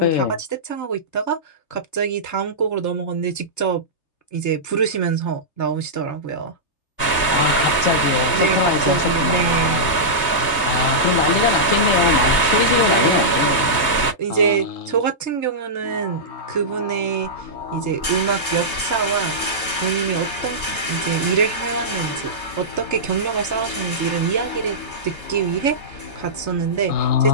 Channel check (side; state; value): right; late; 3.3 ms